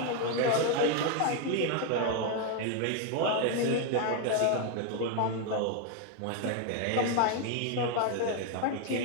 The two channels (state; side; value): different; both; correlation 0.01